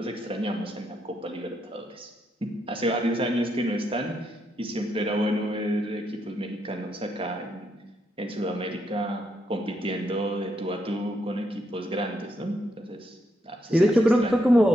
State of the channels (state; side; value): normal; both; correlation 0.79